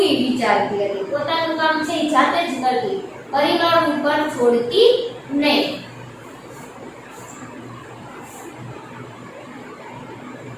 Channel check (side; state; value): both; identical; correlation 1.00